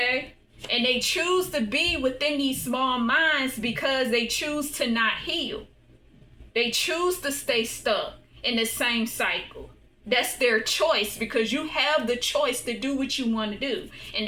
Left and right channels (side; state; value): both; identical; correlation 1.00